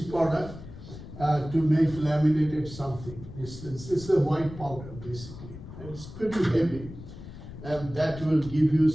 product, to make laminated something. It's a white powder basically, and it's pretty heavy, and that will give you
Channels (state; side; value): noise; left; rumble, 13 dB below the sound